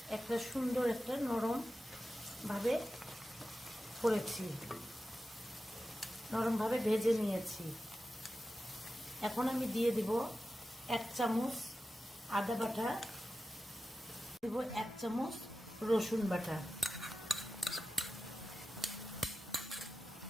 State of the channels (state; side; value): normal; both; correlation 0.93